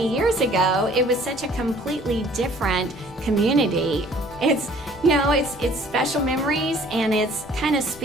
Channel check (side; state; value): both; normal; correlation 0.55